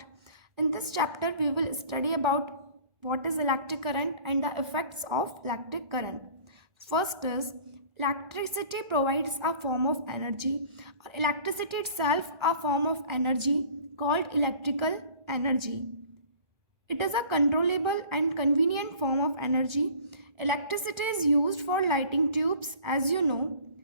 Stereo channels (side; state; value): left; late; 1.5 ms